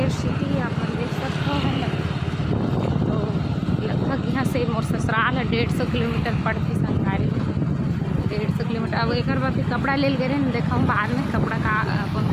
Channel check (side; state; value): both; identical; correlation 1.00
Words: सिटी आप देख सकते हो है ना। तो लगभग यहाँ से मोर ससुराल है 150 किलोमीटर पड़ती संगवारी 150 किलोमीटर। अब एक बार फिर कपड़ा ले गए ना देखा बाद में कपड़ा का कौन